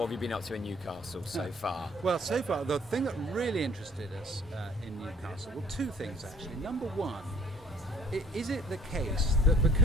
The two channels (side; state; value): both; normal; correlation 0.58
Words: have you been up to in Newcastle so far? Well, so far, the thing that really interested us in Newcastle, well, two things actually. Number one, is it the case that